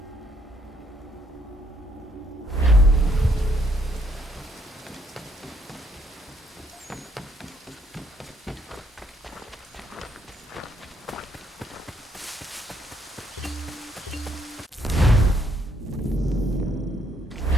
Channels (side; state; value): both; normal; correlation 0.70